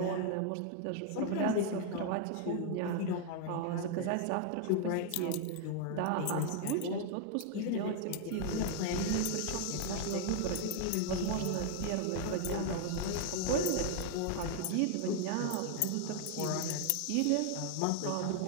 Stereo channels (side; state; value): both; different; correlation 0.00